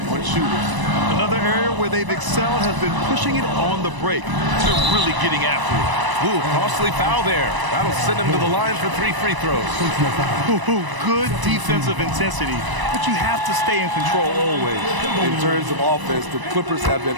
on shooters. Another area where they've excelled has been pushing it on the break to really getting after it. Ooh, costly foul there. That'll send him to the line for 3 free throws. Ooh, good defensive intensity, but you have to stay in control always. In terms of offense, the Clippers have been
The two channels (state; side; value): late; left; 1.0 ms